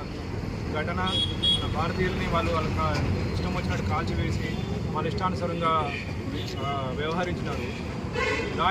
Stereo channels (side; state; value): both; identical; correlation 1.00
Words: ఘటన. మన భారతీయుల్ని వాళ్ళ ఇష్టం వచ్చినట్టు కాల్చివేసి వాళ్ళ ఇష్టానుసారంగా వ్యవహరించినారు.